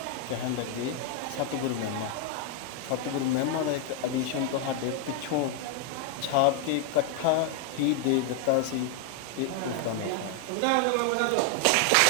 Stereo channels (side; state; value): both; different; correlation 0.00